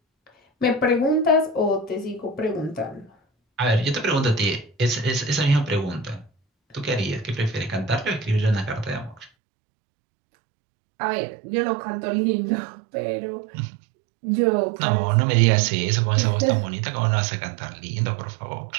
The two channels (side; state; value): left; drops out; at 9.3 s